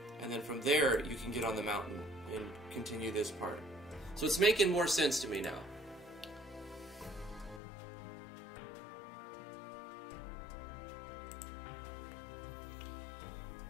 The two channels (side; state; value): right; drops out; at 7.6 s